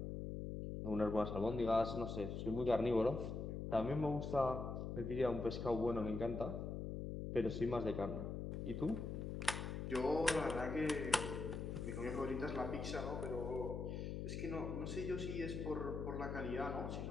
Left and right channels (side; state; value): left; noise; hum, 4 dB below the sound